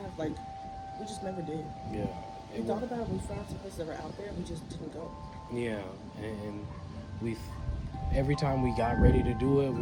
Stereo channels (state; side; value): identical; both; correlation 1.00